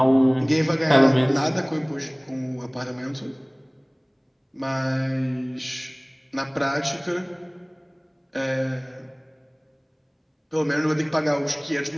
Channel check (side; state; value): both; identical; correlation 1.00